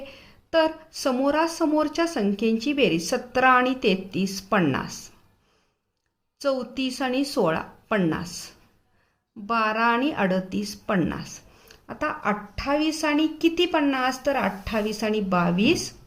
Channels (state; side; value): identical; both; correlation 1.00